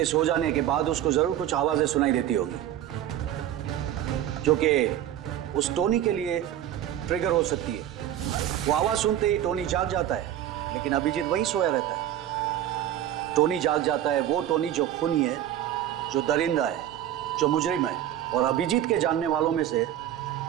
सो जाने के बाद उसको जरूर कुछ आवाजें सुनाई देती होगी जो कि उस टोनी के लिए ट्रिगर हो सकती है। वो आवाज सुनते ही टोनी जाग जाता है, लेकिन अभिजीत वहीं सोया रहता है। टोनी जाग जाता है वो टोनी जो खूनी है, जो दरिंदा है, जो मुजरिम है, और अभिजीत के जानने वालों में से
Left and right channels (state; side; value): quieter; left; 11.6 dB